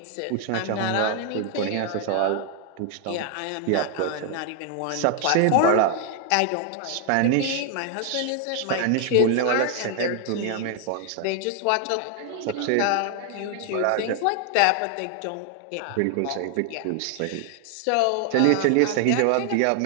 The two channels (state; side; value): different; both; correlation 0.00